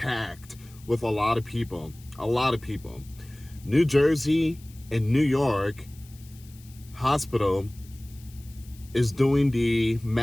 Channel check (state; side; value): noise; left; hiss, 24 dB below the sound